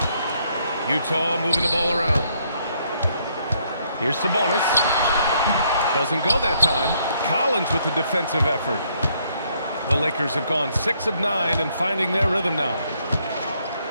Utah moving the ball around. Here's Sabonis. Doesn't go that time. Collins with the defensive effort. The Lakers have gone 6 of 9 and finding their rhythm now.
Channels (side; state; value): both; inverted; correlation -0.70